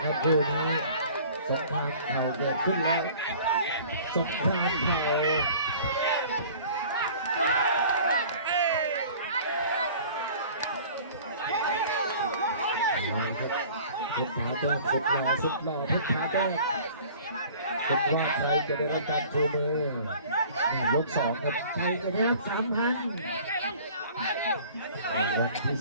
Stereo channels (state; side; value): inverted; both; correlation -0.47